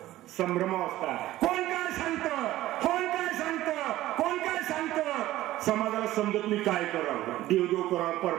संभ्रमावस्था. कोण काय सांगतं, कोण काय सांगतं, कोण काय सांगतं. समाजाला समजत नाही काय करावं, देवदेव करावं,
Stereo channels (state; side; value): quieter; left; 15.3 dB